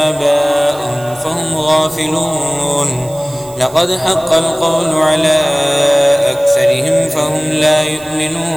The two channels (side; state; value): right; noise; hiss, 21 dB below the sound